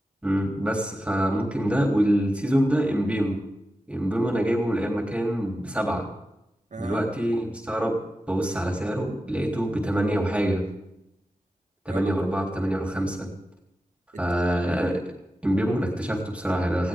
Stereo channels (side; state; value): both; normal; correlation 0.92